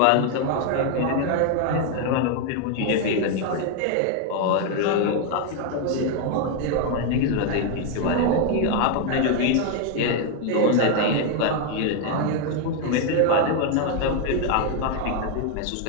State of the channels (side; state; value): both; different; correlation 0.01